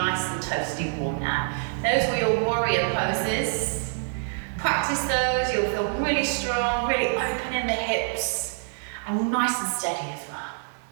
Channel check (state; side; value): silent; left; 61 dB below the other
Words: and toasty warm now. Those were your warrior poses. Practice those, you'll feel really strong, really open in the hips, and nice and steady as well.